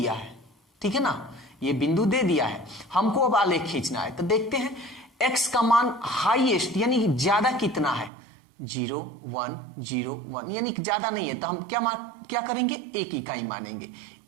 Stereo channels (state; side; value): drops out; left; at 8.1 s